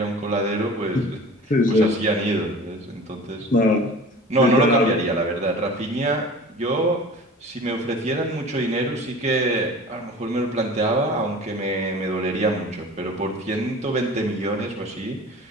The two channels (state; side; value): normal; both; correlation 0.40